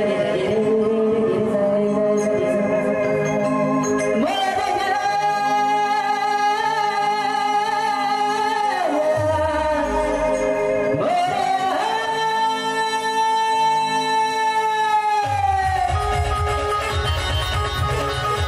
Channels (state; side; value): identical; both; correlation 1.00